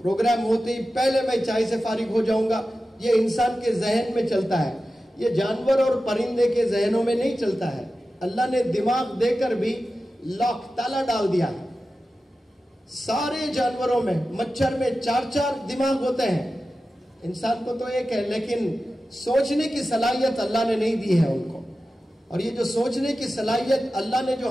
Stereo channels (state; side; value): normal; both; correlation 0.93